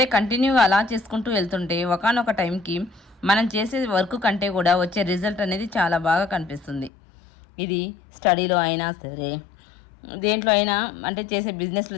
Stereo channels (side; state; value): right; drops out; at 6.9 s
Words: కంటిన్యూగా అలా చేసుకుంటూ వెళ్తుంటే ఒకానొక టైంకి మనం చేసే వర్క్ కంటే కూడా వచ్చే రిజల్ట్ అనేది చాలా బాగా కనిపిస్తుంది. ఇది స్టడీలో అయినా సరే, దేంట్లో అయినా, అంటే చేసే